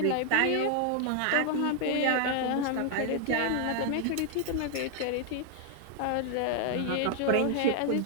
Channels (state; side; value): different; both; correlation 0.00